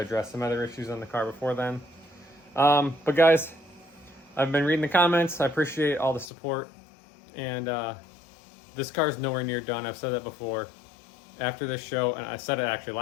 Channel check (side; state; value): right; drops out; at 6.3 s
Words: some other issues on the car before then. But guys, I've been reading the comments. I appreciate all the support. And this car is nowhere near done. I've said that before. After this show, and I said it actually